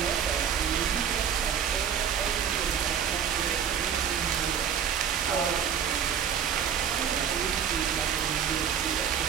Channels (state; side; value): quieter; left; 8.1 dB